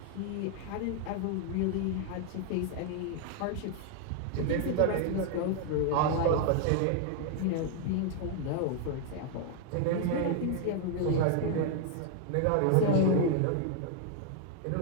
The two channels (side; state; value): both; different; correlation 0.00